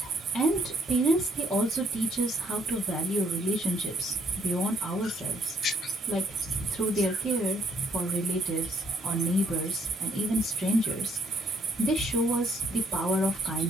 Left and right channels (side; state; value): both; normal; correlation 0.68